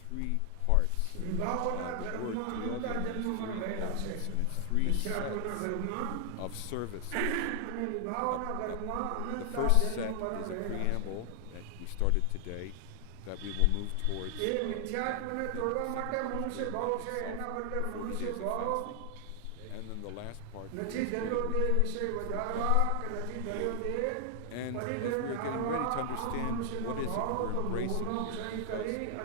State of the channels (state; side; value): different; both; correlation 0.00